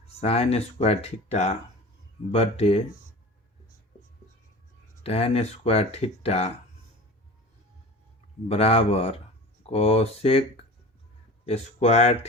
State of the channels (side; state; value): both; normal; correlation 0.38